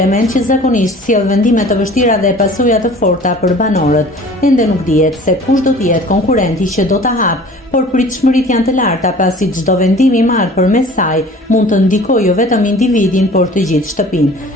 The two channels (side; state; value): both; normal; correlation 0.46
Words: që zakonisht sjell vendime të vështira dhe pasoja të forta për banorët. Ende nuk dihet se kush do të jetë konkurrenti që do ta hapë, por pritshmëritë janë të larta pasi çdo vendim i marrë përmes saj mund të ndikojë jo vetëm individin, por të gjithë shtëpinë.